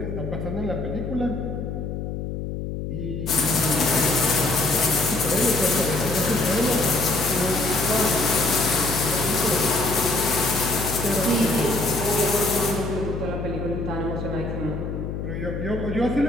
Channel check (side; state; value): left; noise; hum, 5 dB below the sound